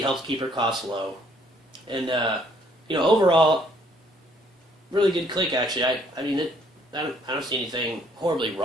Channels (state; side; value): normal; both; correlation 0.64